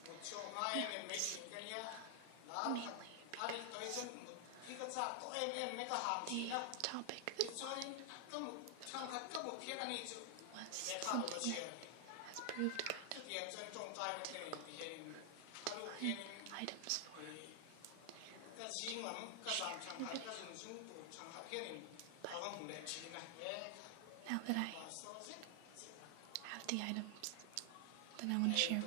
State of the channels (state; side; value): different; both; correlation 0.00